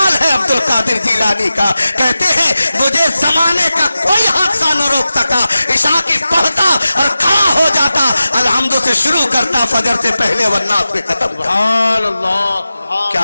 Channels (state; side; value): inverted; both; correlation -0.94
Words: ہے عبد القادر جیلانی کا. کہتے ہیں مجھے زمانے کا کوئی حادثہ نہ روک سکا. عشاء کی پڑھتا اور کھڑا ہو جاتا، الحمد سے شروع کرتا فجر سے پہلے والناس پہ ختم. سبحان اللہ. کیا